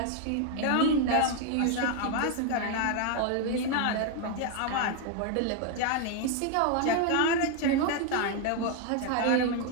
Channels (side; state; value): both; different; correlation 0.01